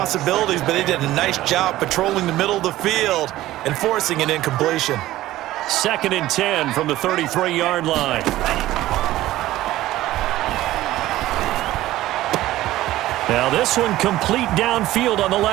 but they did a nice job patrolling the middle of the field and forcing an incompletion. 2nd and 10 from the 33-yard line. Now this one complete downfield on the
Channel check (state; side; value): quieter; left; 15.5 dB